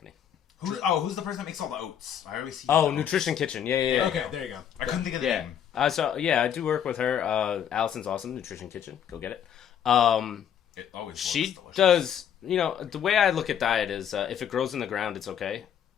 Who's the person that makes all the oats? I always see. Oh, Nutrition Kitchen. Yeah. Okay, there you go. I couldn't think of the Yeah. name. I do work with her. Allison's awesome. Nutrition Kitchen. Go get it. It always She looks delicious. does, the way I look at diet is if it grows in the ground, it's okay.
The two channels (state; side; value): quieter; right; 9.1 dB